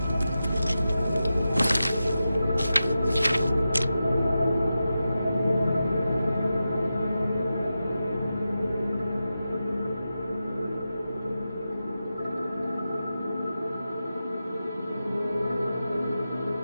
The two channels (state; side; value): inverted; both; correlation -0.91